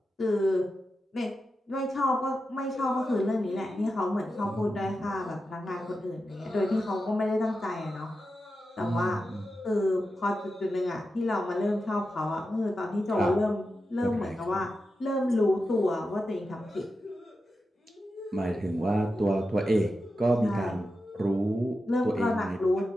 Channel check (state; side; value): normal; both; correlation 0.90